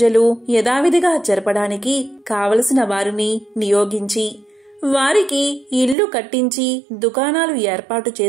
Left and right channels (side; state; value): left; drops out; at 6.0 s